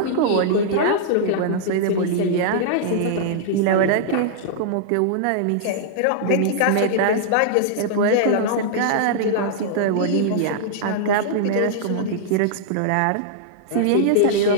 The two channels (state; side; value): different; both; correlation -0.02